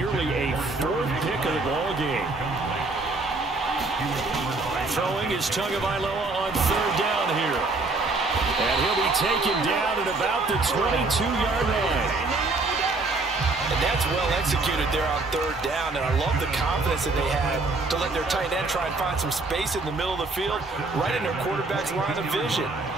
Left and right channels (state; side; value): quieter; left; 3.4 dB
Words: a 4th pick of the ball game. Throwing is Tagovailoa on 3rd down here. And he'll be taken down at about the 22-yard line. And that's well executed there on 3rd down. And I love the confidence that they had to let their tight end try and find some space in the middle of the field, right in their quarterback's line of vision.